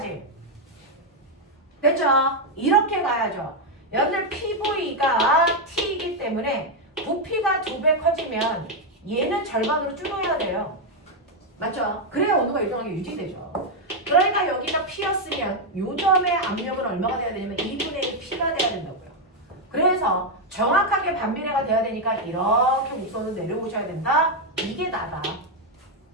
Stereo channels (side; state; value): both; normal; correlation 0.02